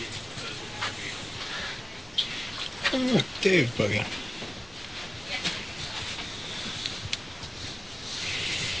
Oh, look, Dave's buggy.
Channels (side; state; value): left; noise; hum, 25 dB below the sound